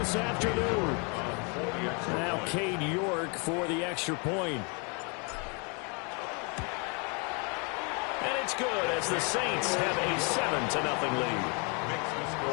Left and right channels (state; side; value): quieter; right; 34.1 dB